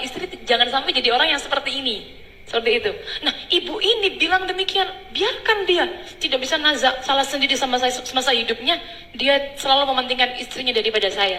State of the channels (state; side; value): identical; both; correlation 1.00